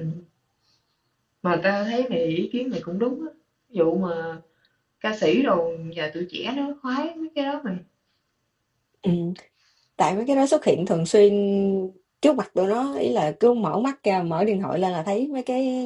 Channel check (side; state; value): both; identical; correlation 1.00